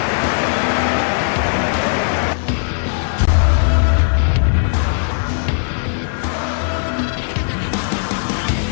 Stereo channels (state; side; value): silent; right; digital silence